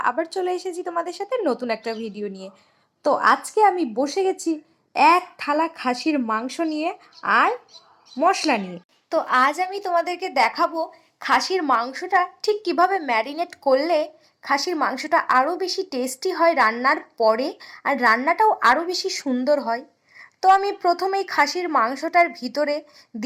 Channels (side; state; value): both; identical; correlation 1.00